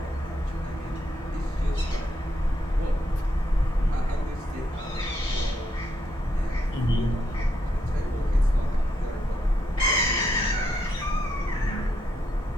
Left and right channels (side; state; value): both; normal; correlation 0.78